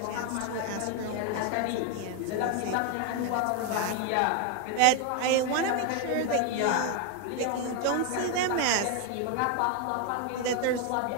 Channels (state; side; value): different; both; correlation 0.01